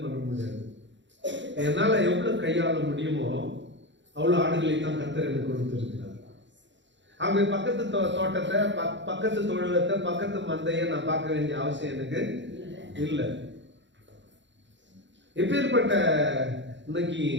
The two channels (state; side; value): late; left; 0.53 ms